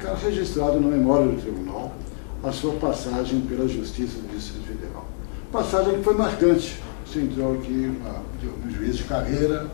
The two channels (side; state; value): right; silent; 62 dB below the other